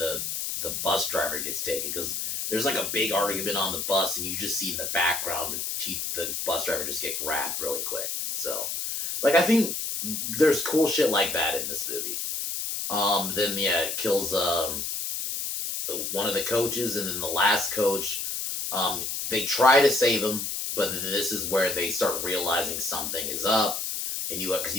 the bus driver gets taken, because there's like a big argument on the bus, and you just see in the background the bus driver just get grabbed really quick. So, like, I think there's cool shit like that in this movie. Then it kills one of the coaches, and then the last coach, they try to save him, but this is where they start realizing something is up, and because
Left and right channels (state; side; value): noise; left; hiss, 3 dB below the sound